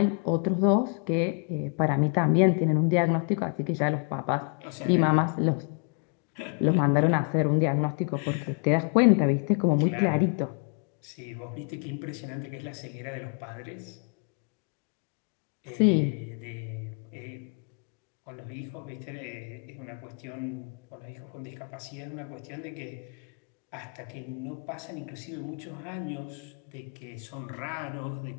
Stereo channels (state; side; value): quieter; right; 39.4 dB